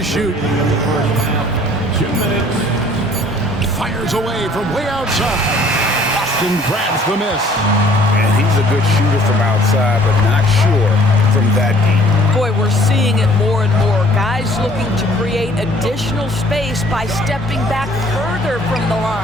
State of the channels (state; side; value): normal; both; correlation 0.56